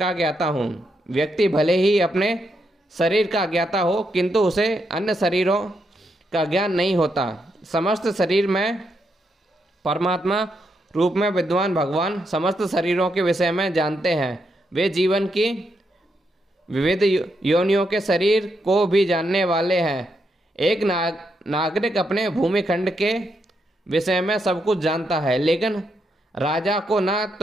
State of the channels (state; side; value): normal; both; correlation 0.81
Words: ज्ञाता हूँ। व्यक्ति भले ही अपने शरीर का ज्ञाता हो, किंतु उसे अन्य शरीरों का ज्ञान नहीं होता। समस्त शरीर में परमात्मा रूप में विद्वान भगवान समस्त शरीरों के विषय में जानते हैं। वे जीवन की विविध योनियों के शरीर को भी जानने वाले हैं। एक नागरिक अपने खंड के विषय में सब कुछ जानता है, लेकिन राजा को